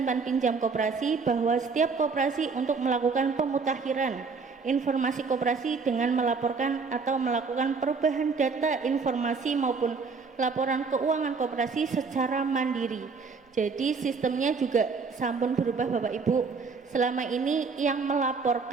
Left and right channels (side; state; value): left; quieter; 4.9 dB